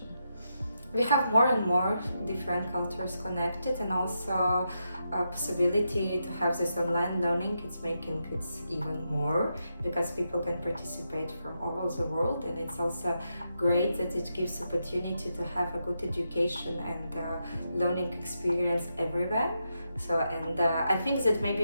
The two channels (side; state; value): both; inverted; correlation -0.84